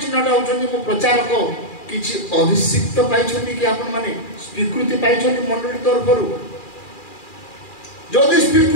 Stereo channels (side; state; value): right; late; 2.4 ms